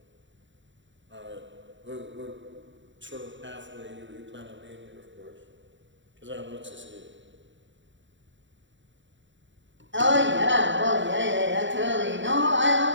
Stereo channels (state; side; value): late; left; 0.54 ms